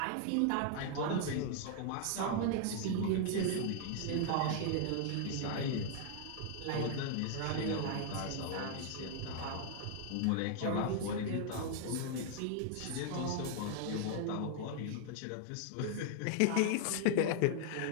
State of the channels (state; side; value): different; both; correlation 0.00